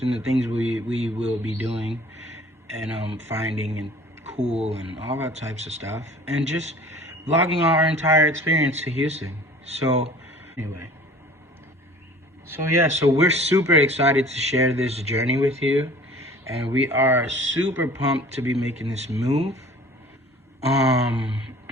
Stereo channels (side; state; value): both; normal; correlation 0.47